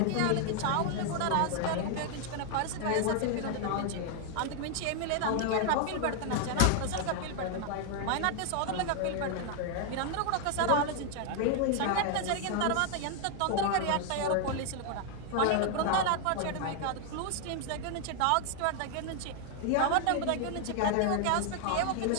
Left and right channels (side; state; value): both; different; correlation 0.00